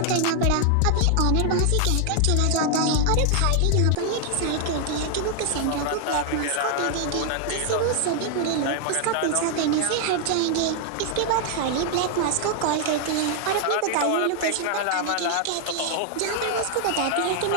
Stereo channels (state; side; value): different; both; correlation 0.00